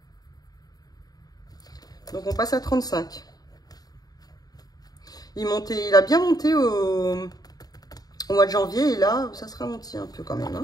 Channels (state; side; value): late; right; 0.18 ms